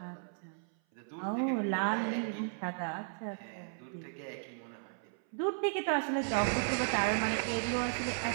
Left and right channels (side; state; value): left; silent; 54 dB below the other